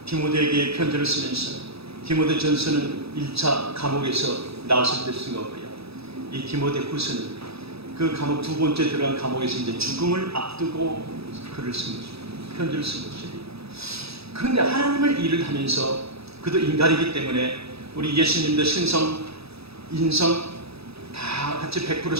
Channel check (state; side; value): late; left; 0.78 ms